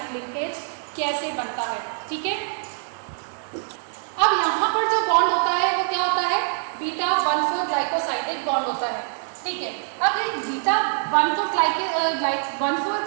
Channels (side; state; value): left; silent; digital silence